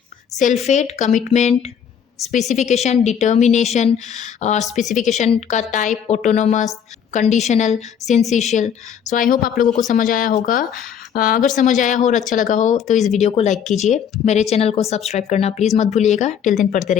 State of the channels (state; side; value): quieter; right; 8.1 dB